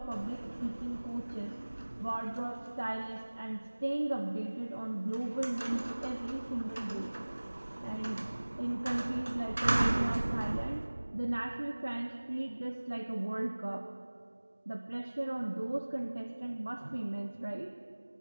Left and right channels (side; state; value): both; inverted; correlation -1.00